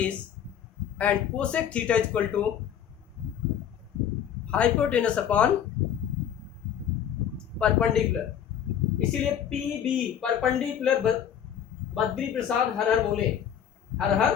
and cosec theta equal to hypotenuse upon perpendicular. इसीलिए P B perpendicular Badri Prasad हर हर बोले, हर हर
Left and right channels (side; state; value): right; quieter; 9.2 dB